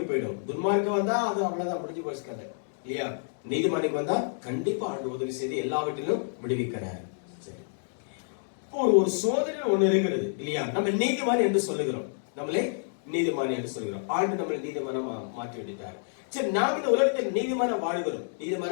போயிடும். துன்மார்க்கம் வந்தா அது அவ்வளவுதான், முடிஞ்சு போச்சுக்காது இல்லையா? நீதிமானுக்கு வந்தா கண்டிப்பா ஆண்டு உதவி செய்து எல்லாவற்றிலும் விடுவிக்கிறார். சரி, ஒரு சோதனை ஒண்ணு இருக்கிறது இல்லையா? நம்ம நீதிமான் என்று சொல்லுகிறோம், நம்மளே நீதிமான் என்று சொல்கிறோம். ஆண்டு நம்மளை நீதிமான மாற்றி விட்டார். சரி, நாம் இந்த உலகத்தில் நீதிமான வாழுகிறோம்.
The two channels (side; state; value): right; silent; digital silence